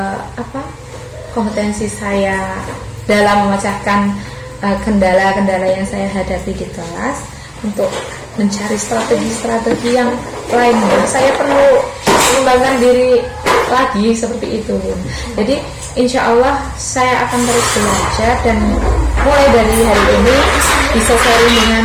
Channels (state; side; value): identical; both; correlation 1.00